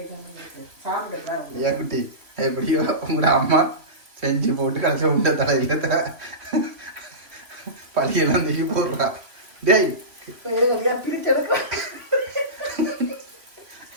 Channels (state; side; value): late; left; 3.0 ms